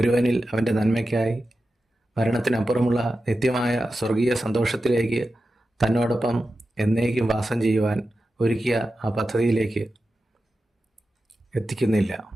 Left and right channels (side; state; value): both; normal; correlation 0.92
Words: അവൻ്റെ നന്മയ്ക്കായി മരണത്തിനപ്പുറമുള്ള നിത്യമായ സ്വർഗീയ സന്തോഷത്തിലേക്ക് തന്നോടൊപ്പം എന്നേക്കും വാസം ചെയ്യുവാൻ ഒരുക്കിയ ആ പദ്ധതിയിലേക്ക് എത്തിക്കുന്നില്ല